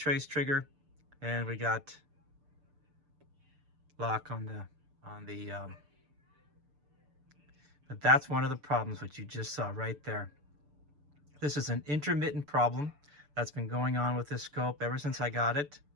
trigger, and we got lock on the but that's one of the problems which you just saw right there. This is an intermittent problem that's been going on with this scope ever since I got it.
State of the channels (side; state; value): left; late; 6.8 ms